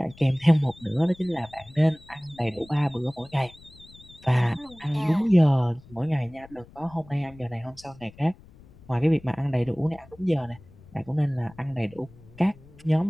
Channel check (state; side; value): noise; left; rumble, 23 dB below the sound